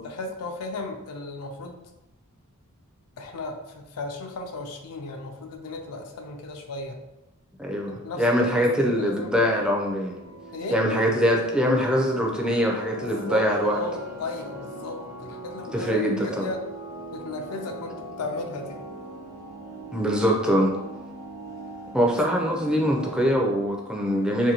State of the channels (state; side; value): normal; both; correlation 0.53